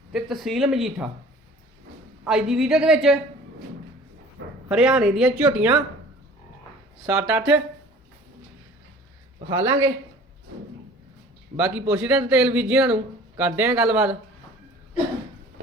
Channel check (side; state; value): both; normal; correlation 0.47